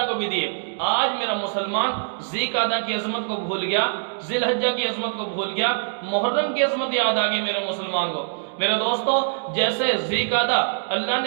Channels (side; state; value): left; silent; digital silence